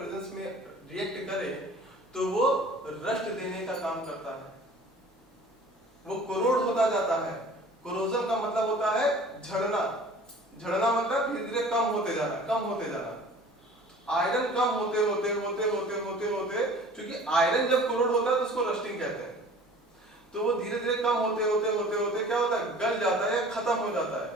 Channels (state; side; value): normal; both; correlation 0.46